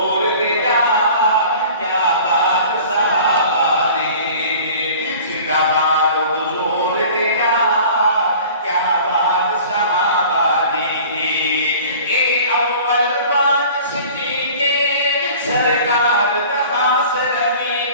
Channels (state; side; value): inverted; both; correlation -0.44